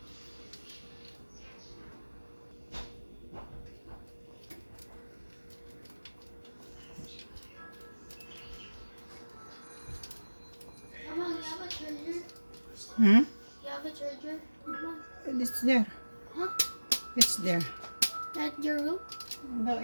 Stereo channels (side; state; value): both; inverted; correlation -1.00